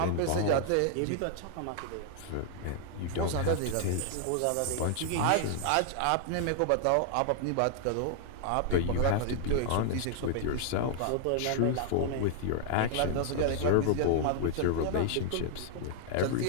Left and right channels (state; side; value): different; both; correlation -0.01